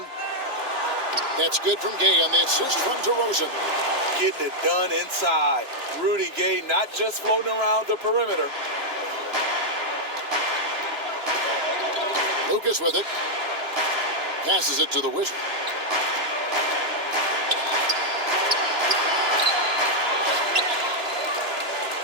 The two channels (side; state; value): left; late; 2.9 ms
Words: That's good from Gay on the assist from DeRozan. Getting it done inside. Rudy Gay not just floating around the perimeter. Lucas with it. Passes it to the Wizard.